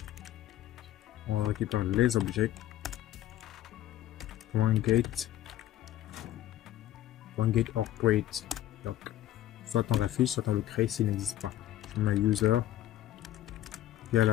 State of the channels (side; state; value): right; quieter; 13.2 dB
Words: On récupère les objets. .get or create. Donc, soit on l'affiche, soit on le crée s'il n'existe pas. Je mets user. Il y a